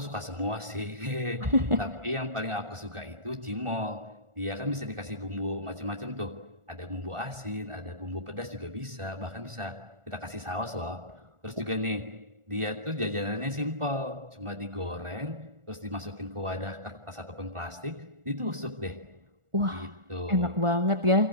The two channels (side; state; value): left; late; 1.4 ms